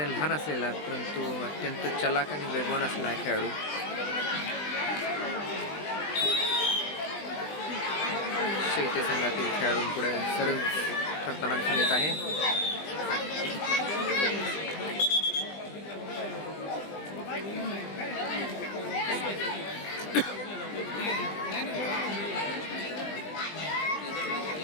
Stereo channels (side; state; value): right; late; 20 ms